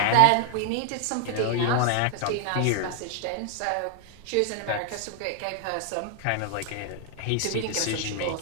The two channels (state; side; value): different; both; correlation 0.00